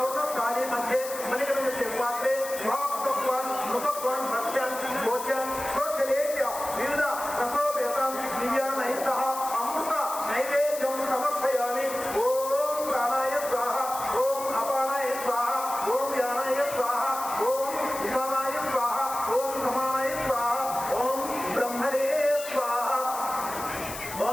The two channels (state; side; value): noise; left; hiss, 10 dB below the sound